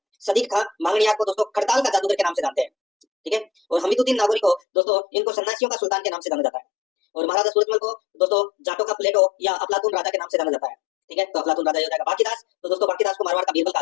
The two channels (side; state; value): right; drops out; at 4.6 s